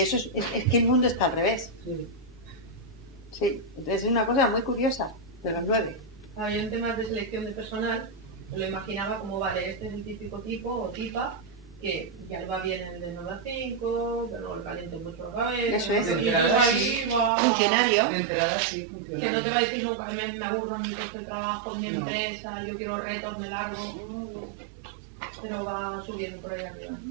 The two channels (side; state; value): left; drops out; at 17.3 s